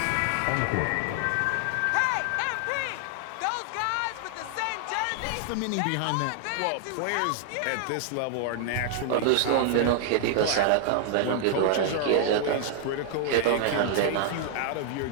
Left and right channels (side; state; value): both; different; correlation 0.00